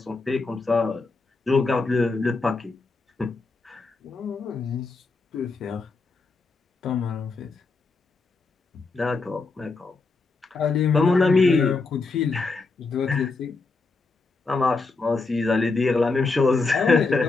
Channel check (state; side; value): quieter; right; 3.9 dB